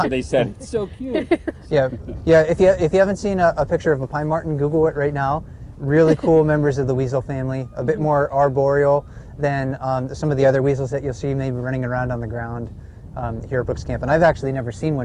So they said it's so cute. Yeah. If you haven't seen a picture of a pine marten, Google it right now. Really cool members of the weasel family. A bit more arboreal than some of the other weasels that you'll see maybe running around on the ground here at Brooks Camp. And I've actually never seen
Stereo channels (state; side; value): identical; both; correlation 1.00